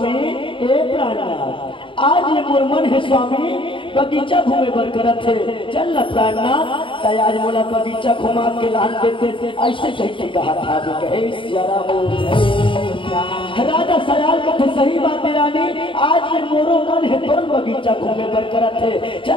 ए प्राणनाथ, आज ये मोर मन है स्वामी बगीचा घूमे बर करत है, चल न प्राणनाथ आज मोला बगीचा घुमा के लान देते, ऐसे कह के कहा था कहे राजा सयाल कथे सही बात है रानी, आज ये मोरो मन है तोर बगीचा घूमे बर करत है,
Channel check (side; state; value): right; late; 0.25 ms